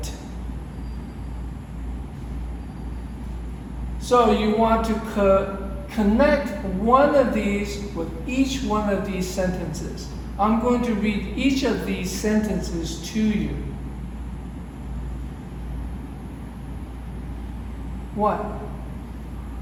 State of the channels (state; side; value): identical; both; correlation 1.00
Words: So you want to connect one of these with each one of these sentences. I'm going to read each of these sentences to you. 1.